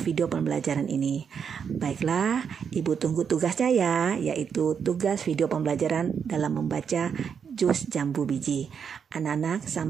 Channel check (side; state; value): left; quieter; 7.0 dB